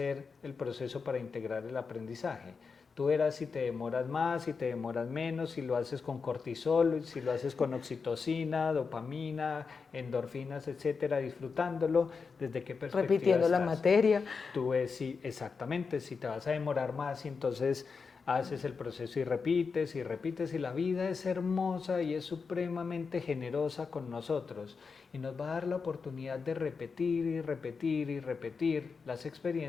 el proceso para integrar el aprendizaje. Tú verás si te demoras más, si te demoras menos, si lo haces con cortisol, si lo haces con oxitocina, dopamina, endorfinas, etcétera, disfrutándolo, desde qué perspectiva repitiendo estás. La materia. Tú ves exactamente, si te vas a demorar más, y entonces haces el proceso y repites, y la vida es hermosa y es supremamente generosa con nosotros, y nos va a dar la oportunidad de repetir y repetir y repetir las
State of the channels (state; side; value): quieter; right; 5.1 dB